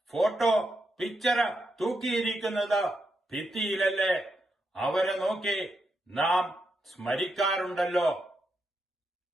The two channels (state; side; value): normal; both; correlation 0.83